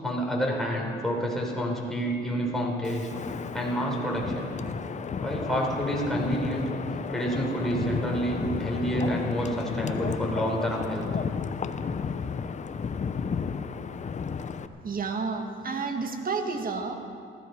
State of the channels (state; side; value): normal; both; correlation 0.58